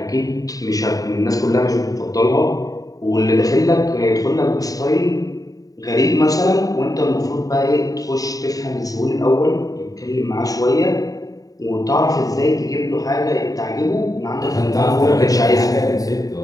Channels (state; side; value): late; right; 0.18 ms